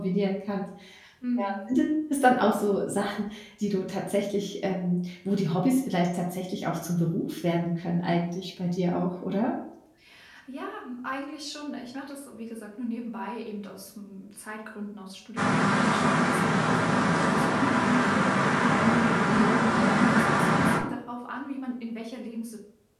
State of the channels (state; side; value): identical; both; correlation 1.00